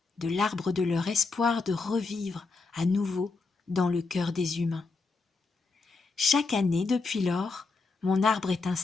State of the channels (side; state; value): right; quieter; 4.1 dB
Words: de l'arbre de leur espoir de revivre à nouveau dans le cœur des humains. Chaque année, depuis lors, mon arbre est